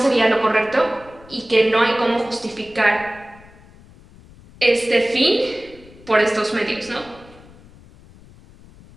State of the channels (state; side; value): noise; left; rumble, 23 dB below the sound